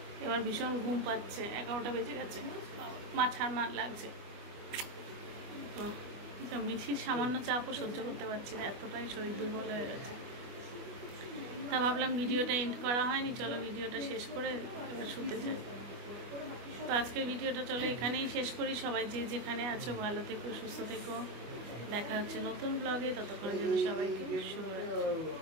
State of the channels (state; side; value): late; left; 25 ms